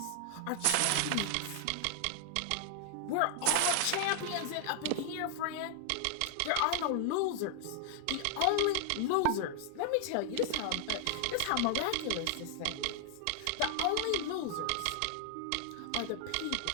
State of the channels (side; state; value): both; different; correlation 0.00